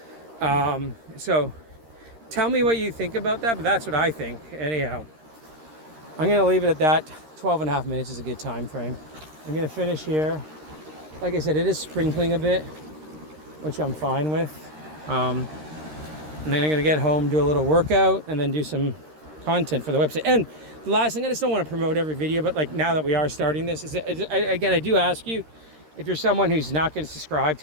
So tell me what you think about that, but that's what I think. Anyhow, I'm going to leave it at that. 12 and a half minutes is a good time frame. I'm going to finish here. Like I said, it is sprinkling a bit, which I'm fine with. And then I'm going to get home, do a little workout, and then do some content for the website. And the last thing, I just don't want to promote every video, but like now that we are starting this, I do ask you, if you're someone who's not going to subscribe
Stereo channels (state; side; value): late; left; 13 ms